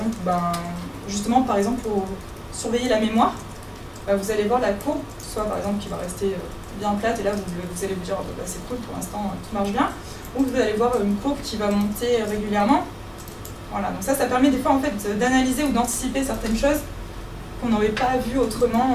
justement par exemple pour surveiller la mémoire, vous allez voir la courbe, soit par exemple qui va rester bien plate et là vous allez vous dire c'est cool pour l'instant tout marche bien, ou vous allez voir une courbe qui va monter régulièrement. Voilà, donc ça permet des fois en fait d'analyser ou d'anticiper certaines choses qu'on n'aurait pas vues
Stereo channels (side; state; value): both; identical; correlation 1.00